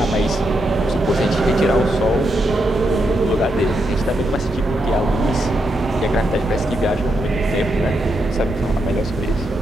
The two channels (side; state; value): both; normal; correlation 0.82